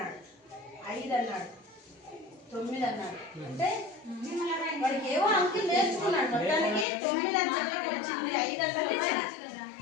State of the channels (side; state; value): right; drops out; at 6.9 s